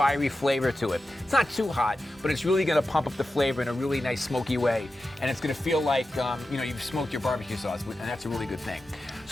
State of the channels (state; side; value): normal; both; correlation 0.92